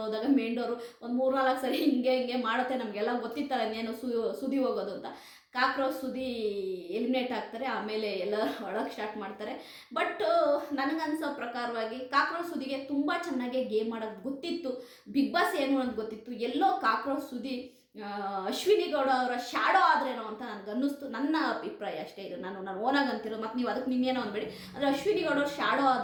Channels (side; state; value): both; identical; correlation 1.00